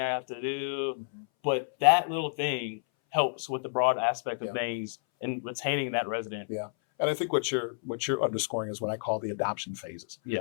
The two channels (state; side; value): silent; right; 58 dB below the other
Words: have to do, but that little thing helps with the broad aspect of things and retaining that resident. Yeah. And I think what you're underscoring is what I call the adoption phases.